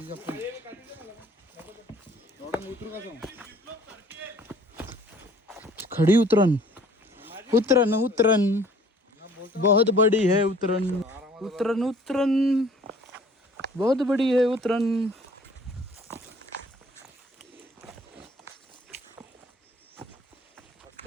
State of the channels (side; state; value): both; normal; correlation 0.54